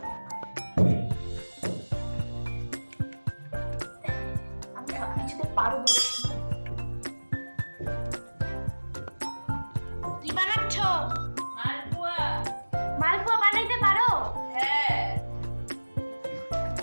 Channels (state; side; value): inverted; both; correlation -1.00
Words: আমি সব কিছুতে পারবো। কি বানাচ্ছ? মালপোয়া। মালপোয়া বানাইতে পারো? হ্যাঁ।